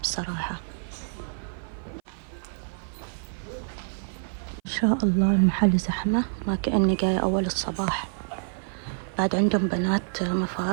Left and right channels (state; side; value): silent; left; 56 dB below the other